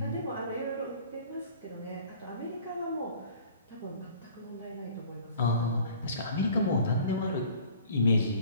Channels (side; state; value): both; inverted; correlation -0.49